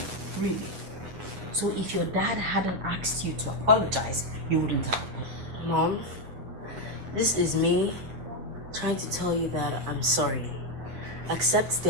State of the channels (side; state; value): left; late; 8.9 ms